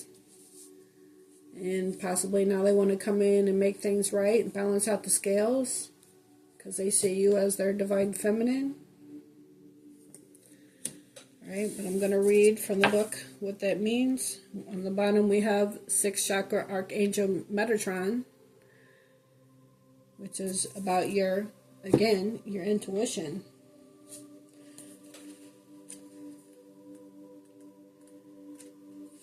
And possibly now they want to come in and make things right and balance out the scales, because they see you as their divine feminine. Alright, but I'm going to read from the book what that means. On the bottom we have 6th chakra Archangel Metatron, which is about your intuition.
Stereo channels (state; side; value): identical; both; correlation 1.00